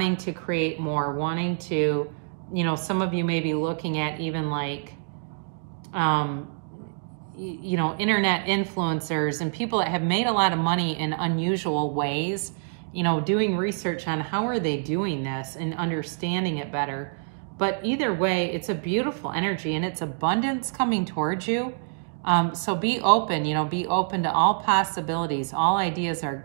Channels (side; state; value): left; silent; digital silence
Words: to create more, wanting to, you know, some of you may be looking at even like, you know, internet influencers and people that have made a lot of money in unusual ways, you know, doing research on how are they doing this and understanding it better. But either way, it's a beautiful energy and it's abundance coming towards you. So be open, you know, be open to all possibilities. All ideas are